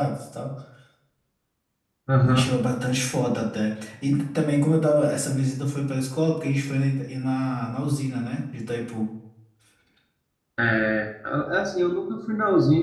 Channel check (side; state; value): both; identical; correlation 1.00